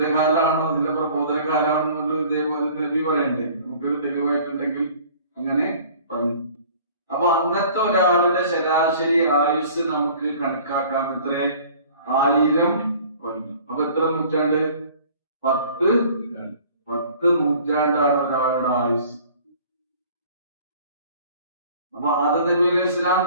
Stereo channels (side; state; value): both; inverted; correlation -0.49